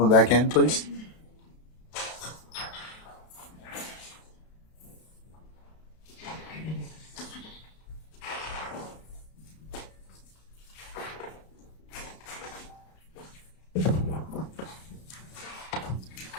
back in, please.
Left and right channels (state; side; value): late; right; 32 ms